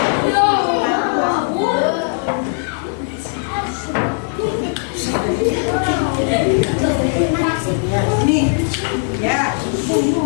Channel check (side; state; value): right; silent; 56 dB below the other